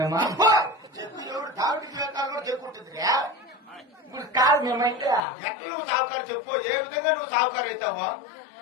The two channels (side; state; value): right; drops out; at 5.2 s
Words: చెప్పు ఎవరు డాక్టర్ జీవితాలు కూడా చెప్పుకుంటుందిరా? ఇప్పుడు కాదు మేమైతే. ఎక్కడ నువ్వు సావుకారు చెప్పు. ఏ విధంగా నువ్వు సావుకారు అవుతావో?